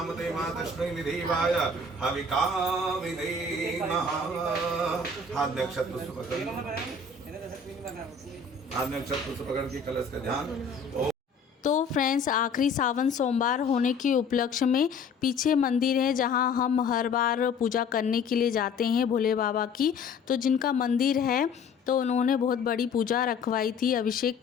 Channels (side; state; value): right; quieter; 4.2 dB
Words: ते मातश्री निधिवाय हविका विधेमः। हाथ में अक्षत पुष्प पकड़ के कलश का ध्यान। तो फ्रेंड्स आखिरी सावन सोमवार होने के उपलक्ष्य में पीछे मंदिर है जहां हम हर बार पूजा करने के लिए जाते हैं भोले बाबा की। तो जिनका मंदिर है तो उन्होंने बहुत बड़ी पूजा रखवाई थी अभिषेक